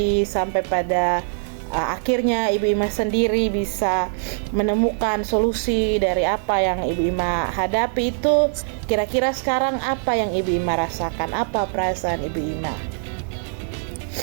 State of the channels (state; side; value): silent; left; 64 dB below the other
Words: sampai pada akhirnya Ibu Ima sendiri bisa menemukan solusi dari apa yang Ibu Ima hadapi itu, kira-kira sekarang apa yang Ibu Ima rasakan? Apa perasaan Ibu Ima?